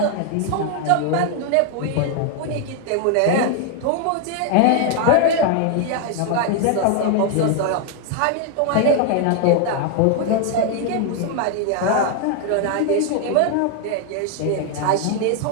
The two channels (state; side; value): different; both; correlation 0.00